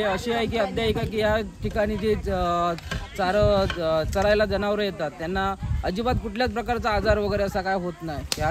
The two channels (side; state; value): both; identical; correlation 1.00